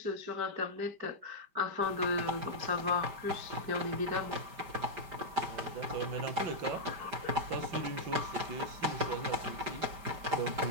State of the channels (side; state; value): left; late; 5.1 ms